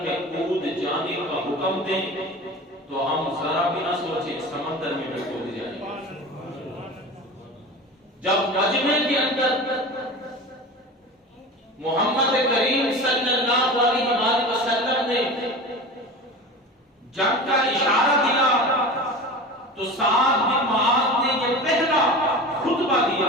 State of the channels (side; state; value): both; normal; correlation 0.32